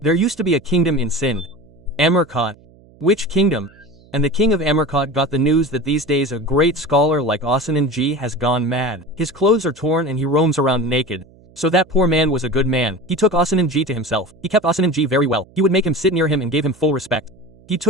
used to be a kingdom in Sindh. Amarkot. Which kingdom? And the king of Amarkot got the news that these days a great scholar like Ashananji has gone mad. His clothes are torn and he roams around naked. So that poor man was a good man. He took Ashananji to himself. He kept Ashananji very well. He would make him sit near him and gave him full respect. He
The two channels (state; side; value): noise; right; hum, 27 dB below the sound